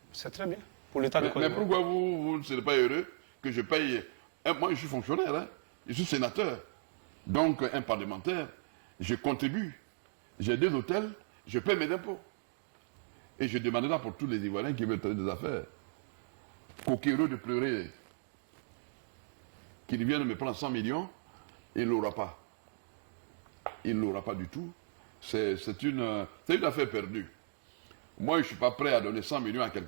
C'est très bien. Pour l'État. Mais pourquoi vous ne serez pas heureux que je paye... Moi, je suis fonctionnaire, hein? Je suis sénateur. Donc, un parlementaire, je contribue. J'ai 2 hôtels, je paye mes impôts. Et je demanderai pour tous les Ivoiriens qui veulent faire des affaires, coquéreux de pleurer, qu'ils viennent me prendre 100 millions, il ne l'aura pas. Il ne l'aura pas du tout. C'est une affaire perdue. Moi, je ne suis pas prêt à donner 100 millions à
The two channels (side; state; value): left; silent; digital silence